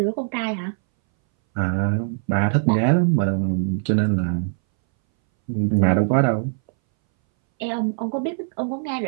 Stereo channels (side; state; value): left; silent; 62 dB below the other